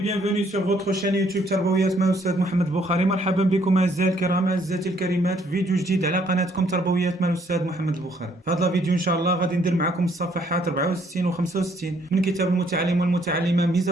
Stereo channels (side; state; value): both; normal; correlation 0.66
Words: bienvenue sur votre chaîne يوتيوب تربويات مع الأستاذ محمد البخاري. مرحبا بكم أعزائي الكرام أعزائي الكريمات في فيديو جديد على قناتكم تربويات مع الأستاذ محمد البخاري. في هذا الفيديو إن شاء الله غادي ندير معكم الصفحات 64 و 65 من كتاب المتعلم والمتعلمة ميز